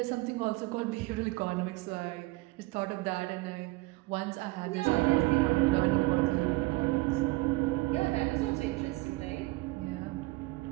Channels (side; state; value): left; quieter; 22.0 dB